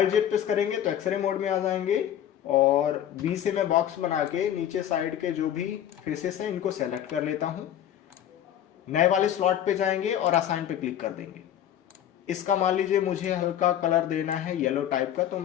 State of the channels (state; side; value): quieter; right; 10.7 dB